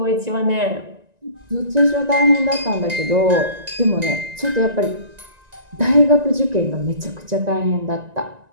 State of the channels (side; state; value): left; late; 1.9 ms